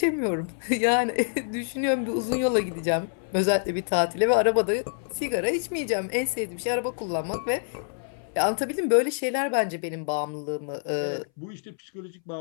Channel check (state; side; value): silent; right; 61 dB below the other